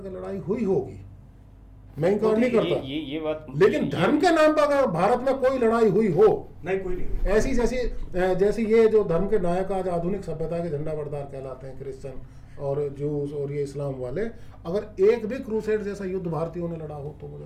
के लड़ाई हुई होगी? मैं इनकार नहीं करता, ये बात, लेकिन धर्म के नाम पर अगर भारत में कोई लड़ाई हुई हो, नहीं, कोई नहीं, ऐसी जैसी ये जो धर्म के नायक आज आधुनिक सभ्यता के झंडा बरदार कहलाते हैं, क्रिश्चियन और जूस और ये इस्लाम वाले, अगर एक भी क्रूसेड जैसा युद्ध भारतीयों ने लड़ा हो तो मुझे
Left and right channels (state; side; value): identical; both; correlation 1.00